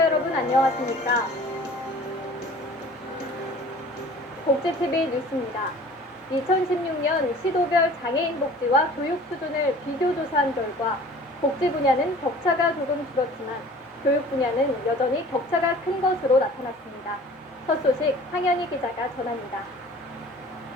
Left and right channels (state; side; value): normal; both; correlation 0.46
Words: 여러분 안녕하십니까? 복지TV 뉴스입니다. 2016년 시도별 장애인 복지와 교육 수준을 비교 조사한 결과 복지 분야는 격차가 조금 줄었지만 교육 분야는 여전히 격차가 큰 것으로 나타났습니다. 첫 소식 황현희 기자가 전합니다.